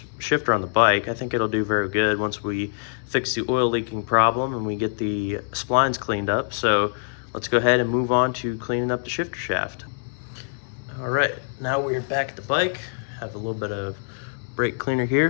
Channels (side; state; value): right; silent; 62 dB below the other